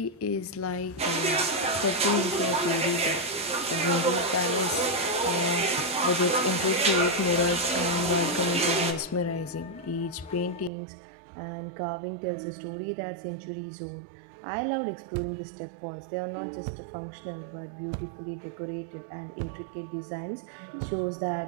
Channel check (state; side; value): drops out; left; at 10.7 s